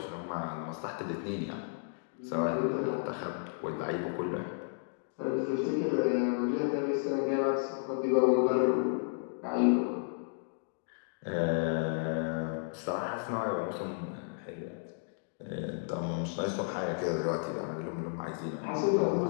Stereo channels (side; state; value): right; silent; digital silence